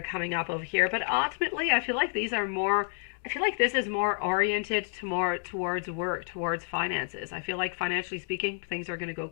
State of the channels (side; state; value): right; silent; 58 dB below the other